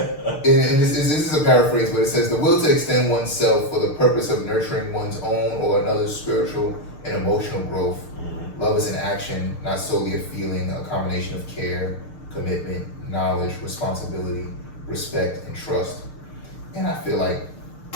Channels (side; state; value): right; late; 6.6 ms